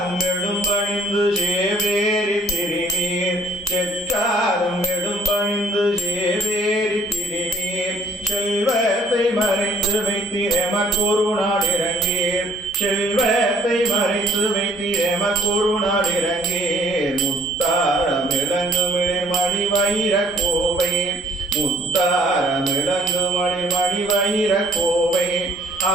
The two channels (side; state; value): both; normal; correlation 0.59